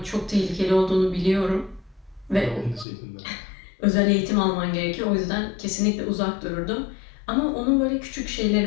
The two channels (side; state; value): right; drops out; at 2.9 s